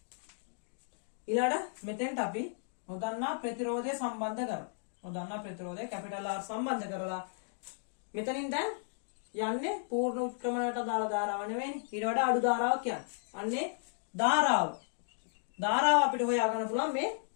මෙතෙන්ට අපි නොදන්නා ප්‍රතිරෝධය සම්බන්ධ කරමු. නොදන්නා ප්‍රතිරෝධය කැපිටල් R සම්බන්ධ කරලා මෙතනින් දැන් යන්නේ පූර්ණ උත්ක්‍රමණයට දාලා ධාරාව නෙවෙයිනේ. ඊට වඩා අඩු ධාරාවක් කියන්නේ. අන්නේ ධාරාව. ධාරාව අපිට හොයා ගන්න පුළුවන් මේ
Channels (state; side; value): silent; right; digital silence